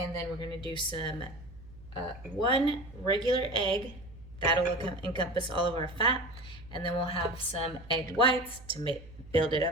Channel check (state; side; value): noise; right; hum, 19 dB below the sound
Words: then we're going to do some one regular egg. That'll encompass all of our fat. And then we'll have some egg whites to build it